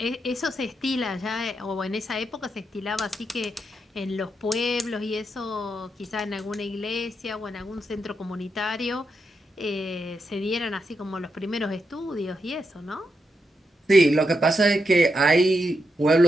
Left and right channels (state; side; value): normal; both; correlation 0.84